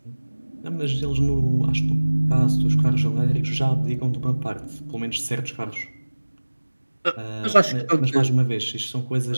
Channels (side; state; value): both; inverted; correlation -1.00